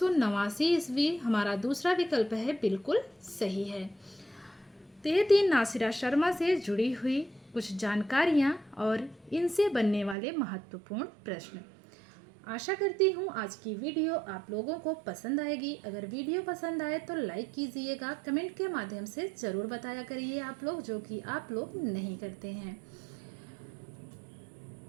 ईस्वी हमारा दूसरा विकल्प है, बिल्कुल सही है। तो ये थी नासिरा शर्मा से जुड़ी हुई कुछ जानकारियाँ और इनसे बनने वाले महत्वपूर्ण प्रश्न। आशा करती हूँ आज की वीडियो आप लोगों को पसंद आएगी। अगर वीडियो पसंद आए तो लाइक कीजिएगा, कमेंट के माध्यम से ज़रूर बताया करिए आप लोग, जो कि आप लोग नहीं करते हैं।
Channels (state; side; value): drops out; left; at 10.2 s